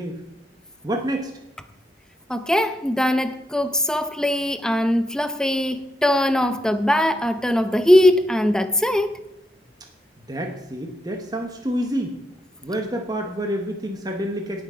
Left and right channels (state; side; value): normal; both; correlation 0.81